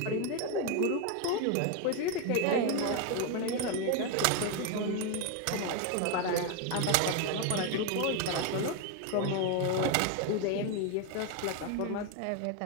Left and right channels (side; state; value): both; different; correlation 0.01